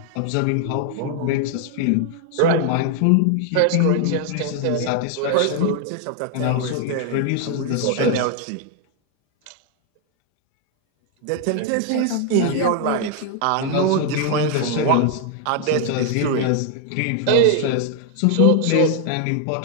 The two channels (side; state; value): both; different; correlation 0.00